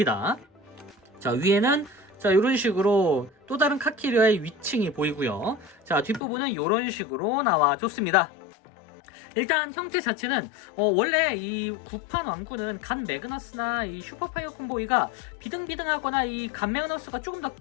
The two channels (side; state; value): right; drops out; at 6.2 s